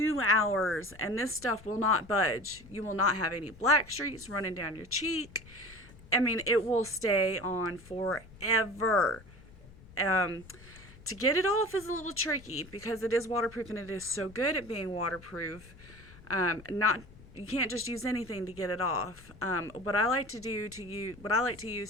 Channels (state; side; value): noise; left; rumble, 21 dB below the sound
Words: hours, and this stuff will not budge. You will not have any black streaks running down your cheek. I mean, it will stay on forever. To get it off is a little tricky because it is waterproof and it is so good at being waterproof. You can't just use anything to get it off. What I like to